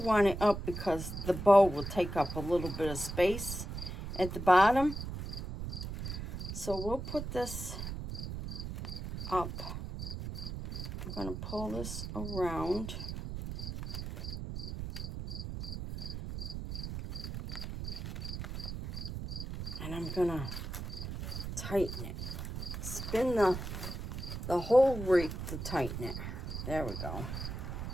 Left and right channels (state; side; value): noise; right; rumble, 6 dB below the sound